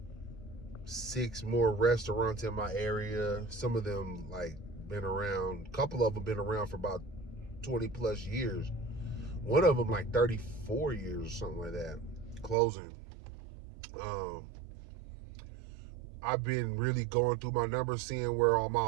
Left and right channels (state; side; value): drops out; left; at 12.6 s